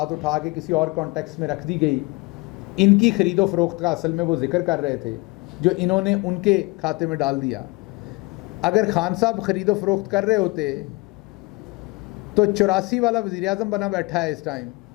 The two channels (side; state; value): right; quieter; 24.8 dB